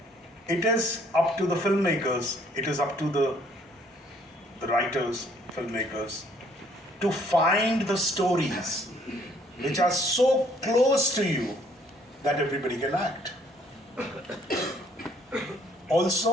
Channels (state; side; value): normal; both; correlation 0.63